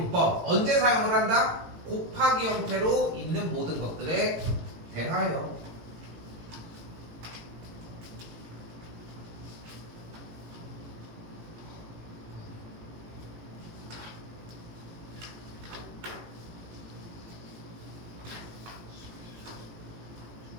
언제 사용을 한다? 곱하기 형태로 있는 모든 것들에 대하여.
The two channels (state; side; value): late; left; 18 ms